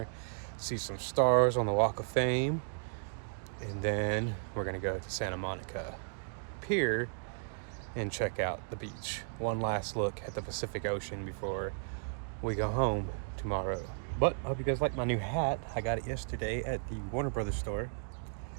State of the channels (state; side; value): silent; left; digital silence